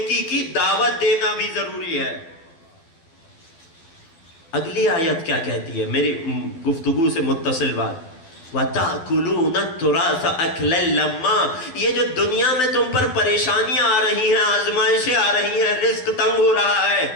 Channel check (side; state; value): right; late; 12 ms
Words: کی دعوت دینا بھی ضروری ہے. اگلی آیت کیا کہتی ہے؟ میری گفتگو سے متصل بات. وَتَأْكُلُونَ التُّرَاثَ أَكْلًا لَمًّا، یہ جو دنیا میں تم پر پریشانیاں آ رہی ہیں، آزمائشیں آ رہی ہیں، رزق تنگ ہو رہا ہے،